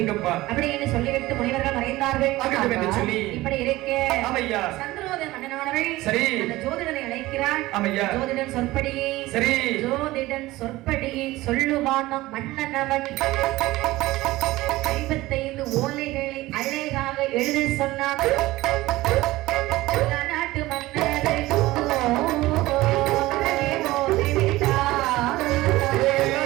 அப்படி என்று சொல்லிவிட்டு முனிவர்கள் மறைந்தார்கள். இப்படி இருக்கே சந்திரோதய மன்னனானவள் அந்த ஜோதிடனை அழைக்கிறாள். ஜோதிடன் சொற்படியே ஜோதிடன் சொற்படியே சொல்லுவான் மன்னனவன் 55 ஓலைகளை அழகாக எழுத சொன்னான். நாட்டு மன்னரை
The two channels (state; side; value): quieter; left; 18.2 dB